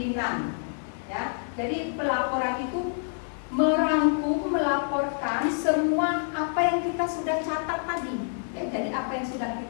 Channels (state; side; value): silent; right; digital silence